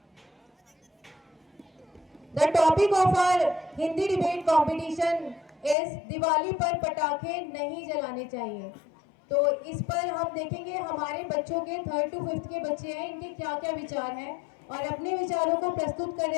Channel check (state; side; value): drops out; right; at 5.8 s